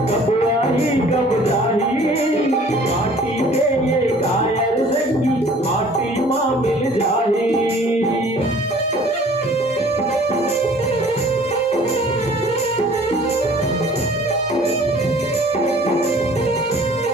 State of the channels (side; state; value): both; normal; correlation 0.51